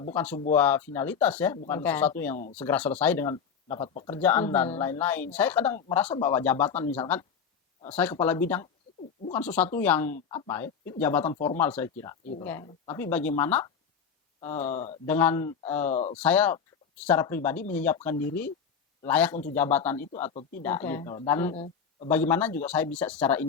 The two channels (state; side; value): quieter; right; 6.8 dB